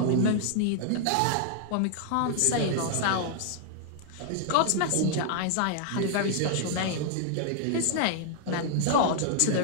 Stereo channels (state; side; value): different; both; correlation -0.01